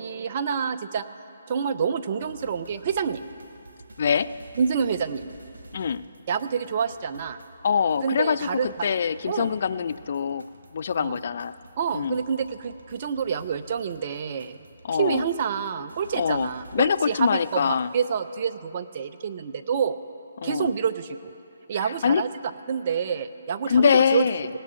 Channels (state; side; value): inverted; both; correlation -0.71